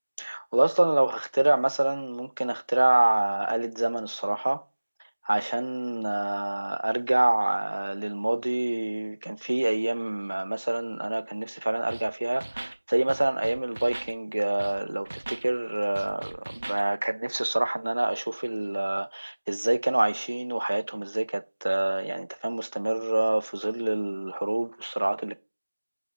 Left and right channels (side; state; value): both; inverted; correlation -1.00